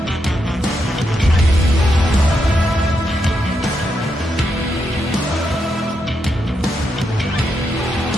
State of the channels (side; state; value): both; normal; correlation 0.82